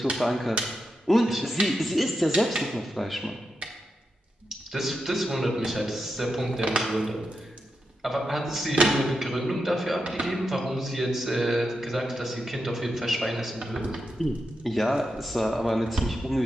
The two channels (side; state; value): both; normal; correlation 0.87